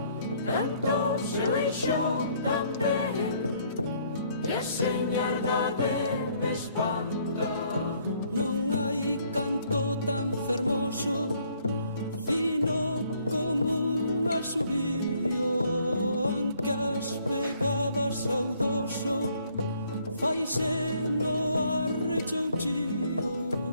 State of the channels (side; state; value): both; inverted; correlation -0.64